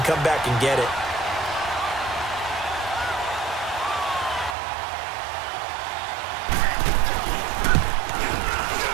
come back and get it.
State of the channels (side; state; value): left; drops out; at 4.5 s